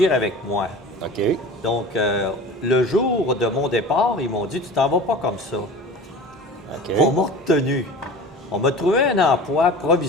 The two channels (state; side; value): normal; both; correlation 0.38